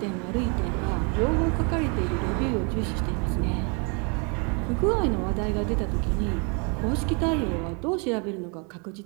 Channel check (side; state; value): left; quieter; 34.8 dB